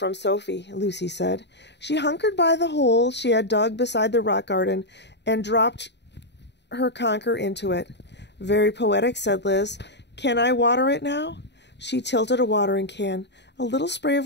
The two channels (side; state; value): right; late; 0.50 ms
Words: Sophie, Lucy said. She hunkered by the hole she had dug beside the rock garden and dropped her conker into it. Very poetic, said Liz. Can I water it now? She tilted a watering can. A little spray of